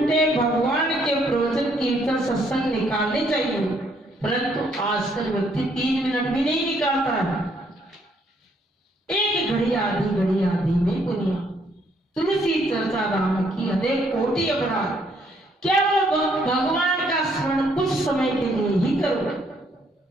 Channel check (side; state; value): both; normal; correlation 0.69